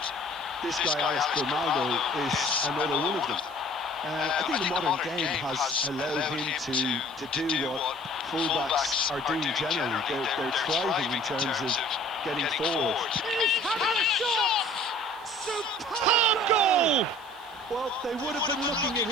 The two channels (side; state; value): right; noise; hiss, 28 dB below the sound